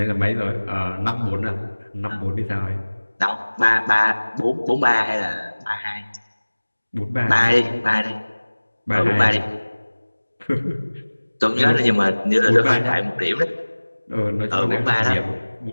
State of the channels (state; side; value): inverted; both; correlation -1.00